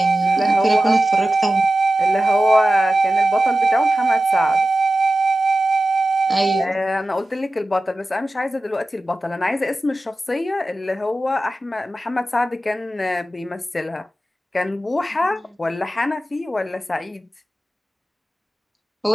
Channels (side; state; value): both; normal; correlation 0.94